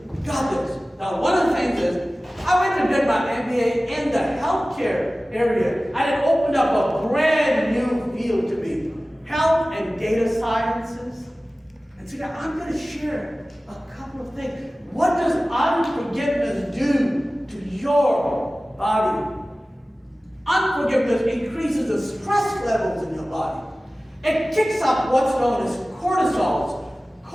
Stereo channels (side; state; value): both; normal; correlation 0.97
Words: we got this. Now, one of the things is, I went and did my MBA in the healthcare area, and it opened up a brand new field to me, health and data sciences. And so now I'm going to share a couple of things. What does unforgiveness do to your body? Unforgiveness increases the stress levels in your body. It kicks up what's known as cortisol.